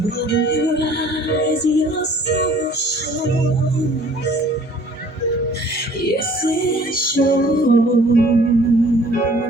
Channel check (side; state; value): both; normal; correlation 0.53